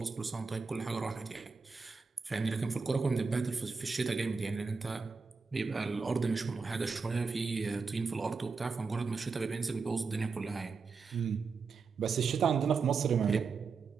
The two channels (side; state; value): left; quieter; 4.8 dB